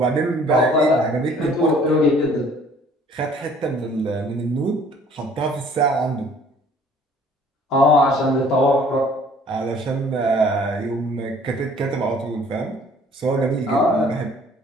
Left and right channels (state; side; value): normal; both; correlation 0.55